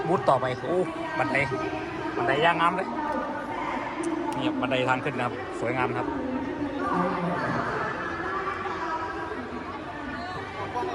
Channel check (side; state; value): both; identical; correlation 1.00